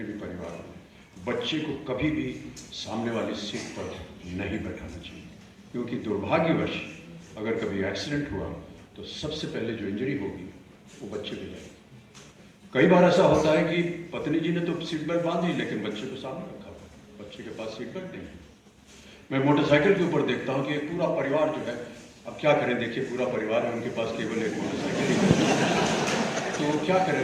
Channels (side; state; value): both; identical; correlation 1.00